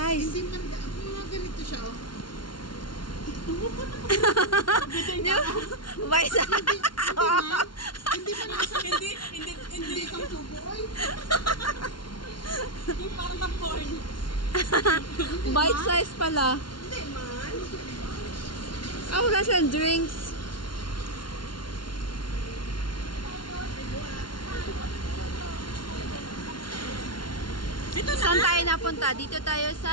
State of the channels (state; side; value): late; right; 0.72 ms